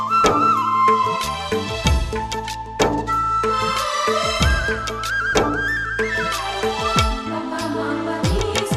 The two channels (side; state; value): both; identical; correlation 1.00